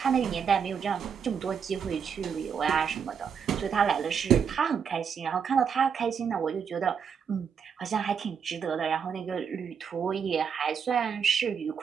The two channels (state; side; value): quieter; left; 7.0 dB